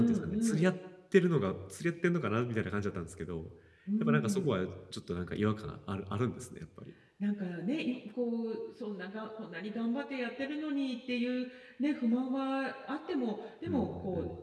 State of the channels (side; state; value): both; identical; correlation 1.00